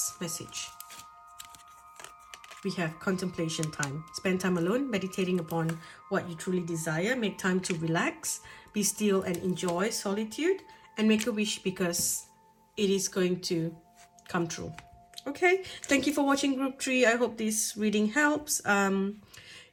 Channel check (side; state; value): both; identical; correlation 1.00